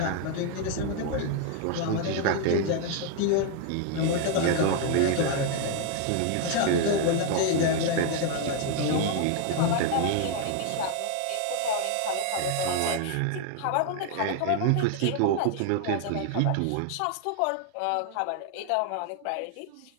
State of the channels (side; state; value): both; different; correlation 0.00